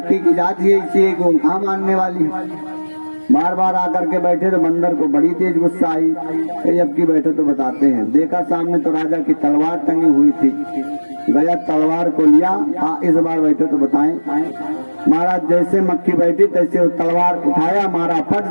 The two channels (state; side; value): inverted; both; correlation -1.00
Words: की जात ही इसी को कहाँ मानने वाली। बार बार आकर के बैठे तो बंदर को बड़ी तेज गुस्सा आई। अब की बैठे तो बताते हैं, देखा सामने तो राजा की तलवार टंगी हुई थी, गया तलवार को लिया, इस बार बैठे तो बताएं। महाराज जैसे मक्खी बैठी तैसे वो तलवार उठाया, मारा फट